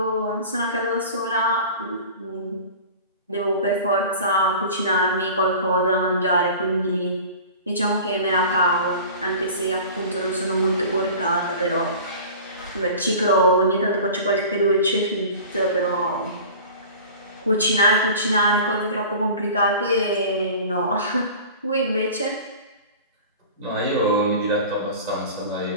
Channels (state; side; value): inverted; both; correlation -0.39